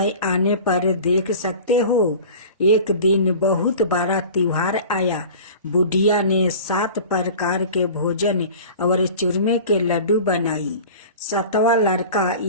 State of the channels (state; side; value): inverted; both; correlation -0.39